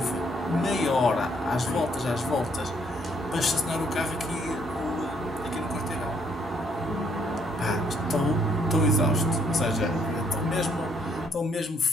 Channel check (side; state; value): both; normal; correlation 0.69